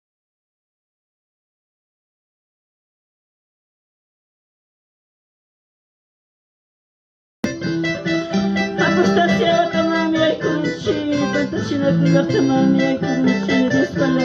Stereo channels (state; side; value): identical; both; correlation 1.00